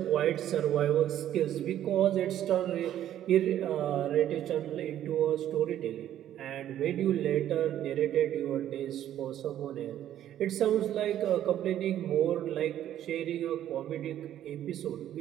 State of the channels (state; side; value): quieter; left; 11.6 dB